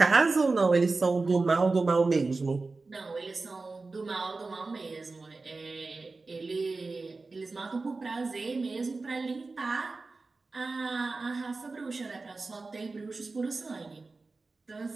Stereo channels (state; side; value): quieter; left; 3.7 dB